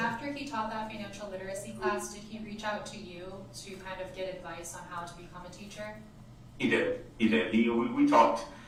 he taught that financial literacy class, did he reach out to you to kind of get advice on how to become a teacher? He did. We talked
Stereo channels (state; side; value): identical; both; correlation 1.00